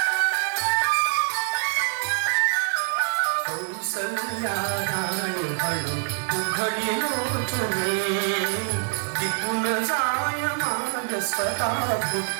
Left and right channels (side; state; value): left; silent; digital silence